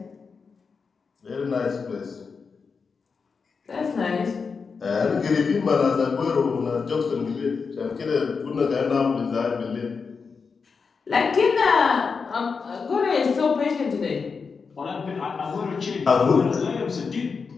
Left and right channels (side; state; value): right; quieter; 5.2 dB